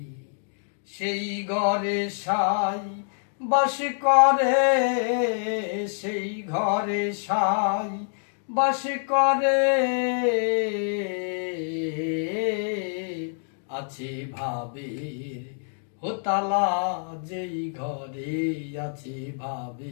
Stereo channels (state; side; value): silent; right; digital silence